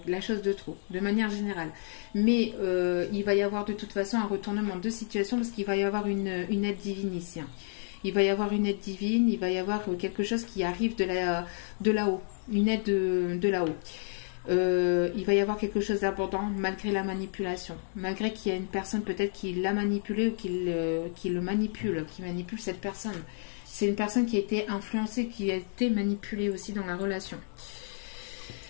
la chose de trop, de manière générale. Mais il va y avoir de toute façon un retournement de situation parce qu'il va y avoir une aide divine ici. Il va y avoir une aide divine, il va y avoir quelque chose qui arrive de là-haut, une aide de là-haut. Il va y avoir quelque chose d'abondant malgré la manipulation, malgré qu'il y a une personne peut-être qui l'a manipulé ou qui le manipule, qui manipule cette personne. C'est une personne qui a été influencée, qui a été manipulée aussi dans la relation.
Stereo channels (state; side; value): silent; right; digital silence